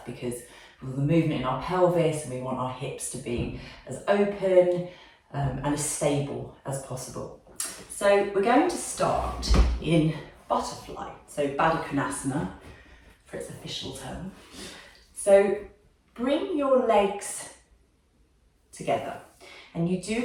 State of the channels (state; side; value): identical; both; correlation 1.00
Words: because with the movement in our pelvis, and we want our hips to be as open and as stable as possible. So we're going to start in butterfly, so Baddha Konasana for its official term. So bring your legs together, and you do